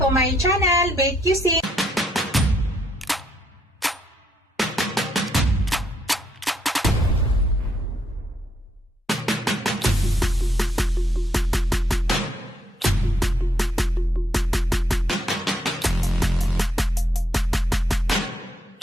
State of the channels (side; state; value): both; normal; correlation 0.75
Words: my channel, Bake Cuisine.